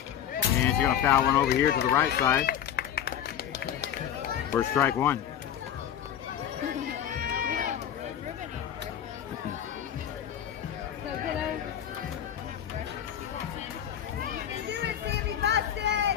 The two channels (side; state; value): right; quieter; 9.9 dB